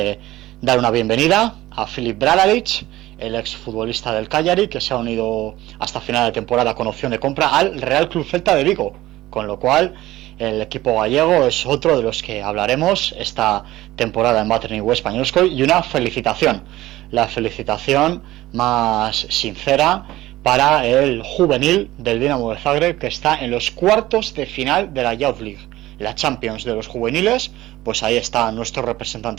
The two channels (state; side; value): quieter; left; 16.5 dB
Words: dar una bienvenida a Filip Bradarić, el exfutbolista del Cagliari, que se ha unido hasta final de temporada con opción de compra al Real Club Celta de Vigo, con lo cual el equipo gallego es otro de los que hablaremos esta temporada en Vatreniu Españolskoy. Y una felicitación, la felicitación más sincera para el juvenil del Dinamo de Zagreb, que está en los cuartos de final de la Youth League, la Champions de los juveniles. Pues ahí está nuestro